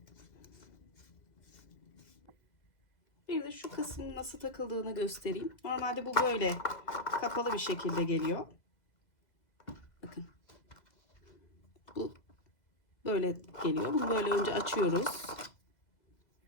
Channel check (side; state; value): right; late; 2.0 ms